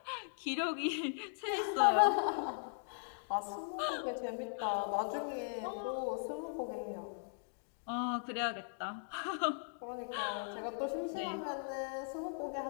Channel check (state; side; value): silent; right; digital silence